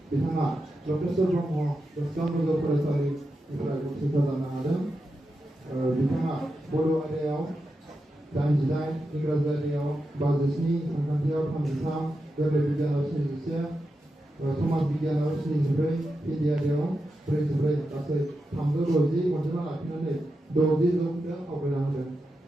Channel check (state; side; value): normal; both; correlation 0.88